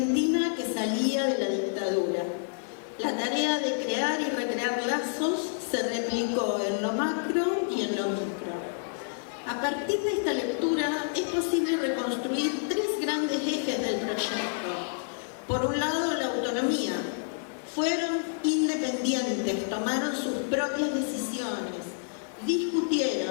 que salía de la dictadura. La tarea de crear y recrear lazos se replicó en lo macro y en lo micro. A partir de esta lectura es posible reconstruir tres grandes ejes del proyecto. Por un lado, la autonomía. Fueron independientes, tomaron sus propias decisiones,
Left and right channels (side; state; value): right; silent; 59 dB below the other